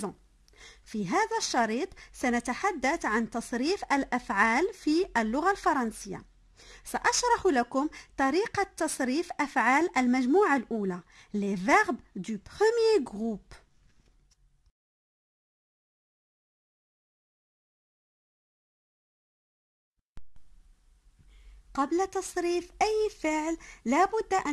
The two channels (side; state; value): both; identical; correlation 1.00